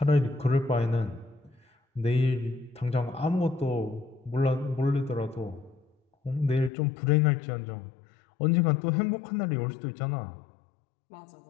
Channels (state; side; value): drops out; right; at 6.7 s